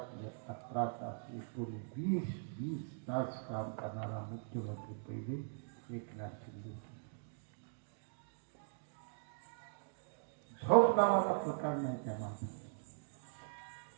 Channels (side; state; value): left; silent; digital silence